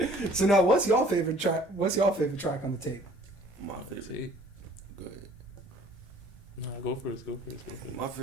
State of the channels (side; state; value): both; normal; correlation 0.54